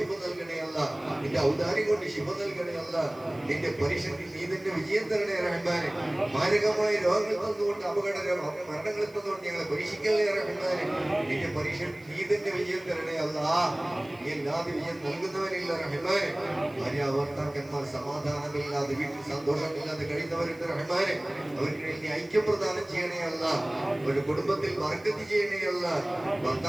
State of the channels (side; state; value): right; noise; hiss, 28 dB below the sound